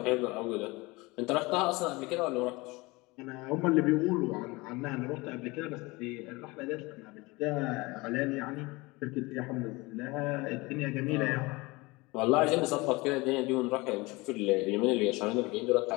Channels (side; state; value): right; quieter; 23.5 dB